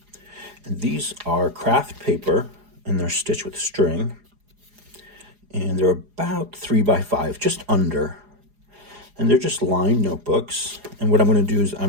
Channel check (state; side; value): late; left; 4.8 ms